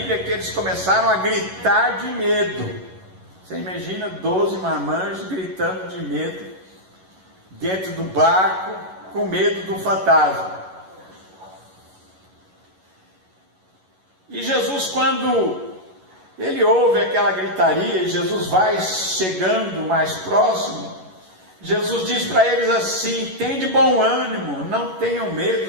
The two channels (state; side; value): late; left; 11 ms